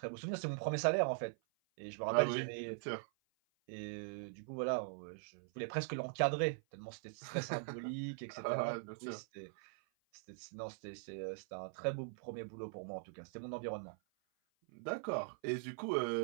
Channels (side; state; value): left; silent; 50 dB below the other